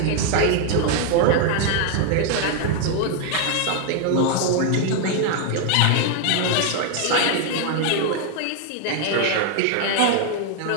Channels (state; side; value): different; both; correlation 0.00